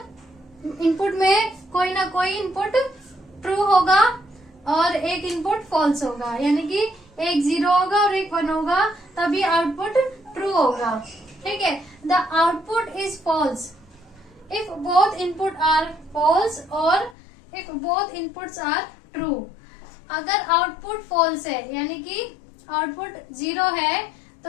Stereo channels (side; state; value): right; drops out; at 17.2 s